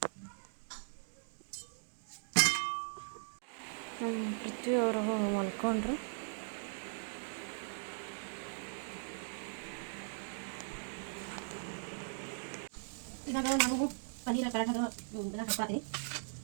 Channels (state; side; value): silent; left; digital silence